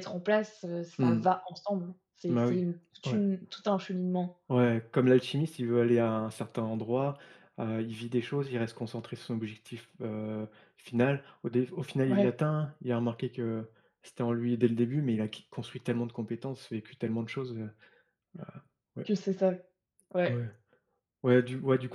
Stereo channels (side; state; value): both; identical; correlation 1.00